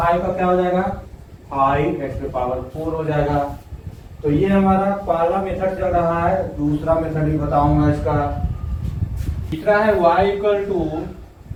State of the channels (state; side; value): identical; both; correlation 1.00